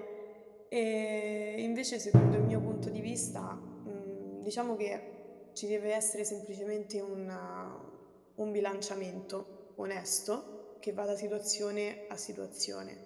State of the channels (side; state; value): both; identical; correlation 1.00